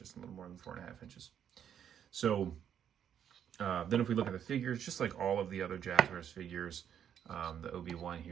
a little more than 4.5 inches. So then if we look at the figures, just like all of the other Jazwares figures, the Obi-Wan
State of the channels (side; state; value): left; quieter; 9.1 dB